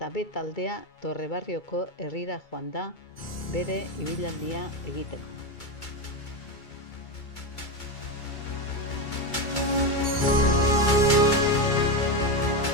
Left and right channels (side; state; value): right; late; 2.3 ms